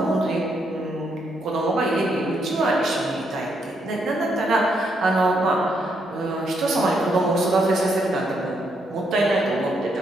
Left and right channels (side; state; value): both; normal; correlation 0.76